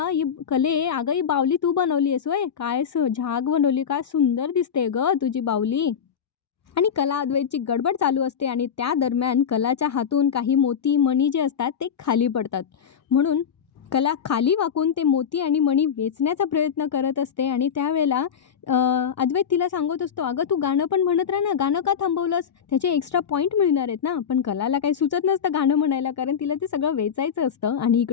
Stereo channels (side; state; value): right; quieter; 7.6 dB